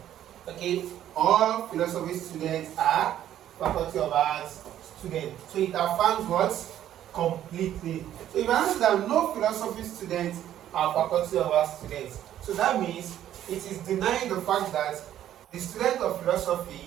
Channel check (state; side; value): quieter; left; 11.5 dB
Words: Okay, all philosophy students are Faculty of Arts students. So it affirms what? Completely. So if I answer that no philosophy students are Faculty of Arts students, so that means it is denying the fact that the students of